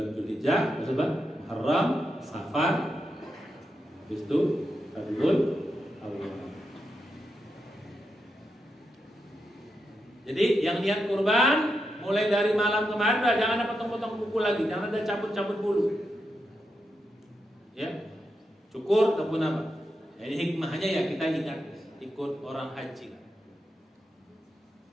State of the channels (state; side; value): normal; both; correlation 0.86